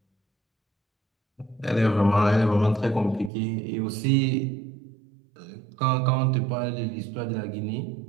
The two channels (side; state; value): left; drops out; at 3.3 s